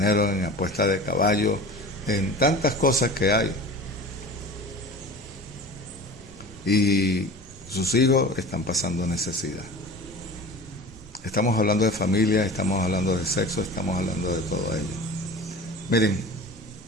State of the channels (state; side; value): normal; both; correlation 0.37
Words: en apuesta de caballo, en tantas cosas que hay. Y sus hijos están pasando necesidad. Estamos hablando de familia, estamos hablando de sexo, estamos hablando de todo ello. Miren,